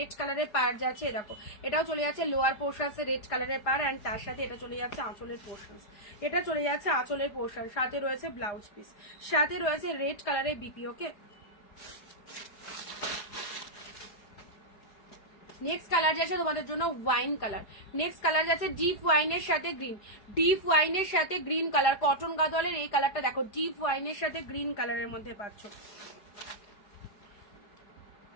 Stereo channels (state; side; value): late; right; 4.9 ms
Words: কালারের পার যাচ্ছে, দেখো এটাও চলে যাচ্ছে লোয়ার পোর্শনস রেড কালারের পার, অ্যান্ড তার সাথে এটা চলে যাচ্ছে আঁচলের পোর্শনস, এটা চলে যাচ্ছে আঁচলের পোর্শন, সাথে রয়েছে ব্লাউজ পিস, সাথে রয়েছে রেড কালারের বিপি। ওকে নেক্সট কালার যাচ্ছে তোমাদের জন্য ওয়াইন কালার, নেক্সট কালার যাচ্ছে ডিপ ওয়াইনের সাথে গ্রিন, ডিপ ওয়াইনের সাথে গ্রিন কালার, কটন গাদোয়ালের এই কালারটা দেখো, ডিপ ওয়াইনের সাথে গ্রিন কালারের মধ্যে পাচ্ছ,